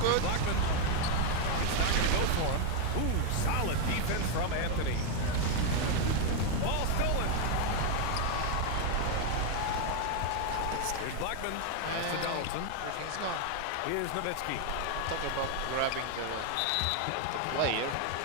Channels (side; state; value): both; different; correlation 0.01